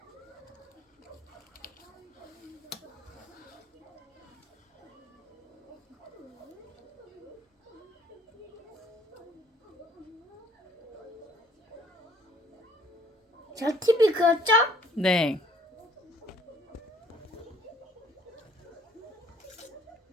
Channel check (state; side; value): normal; both; correlation 0.59